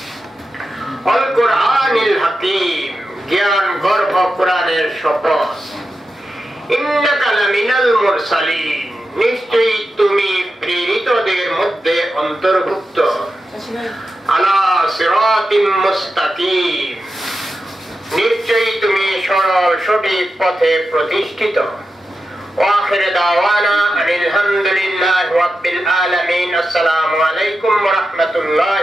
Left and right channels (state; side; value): normal; both; correlation 0.90